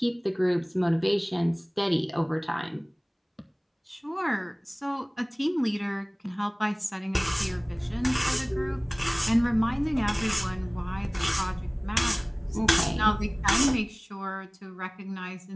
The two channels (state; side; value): identical; both; correlation 1.00